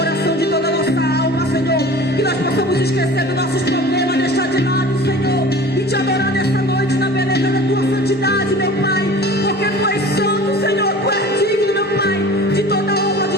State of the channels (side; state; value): both; normal; correlation 0.41